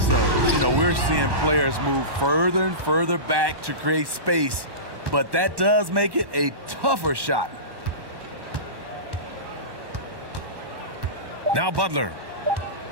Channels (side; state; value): left; late; 1.1 ms